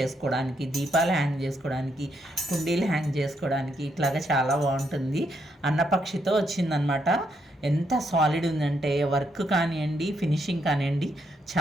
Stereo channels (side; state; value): both; normal; correlation 0.77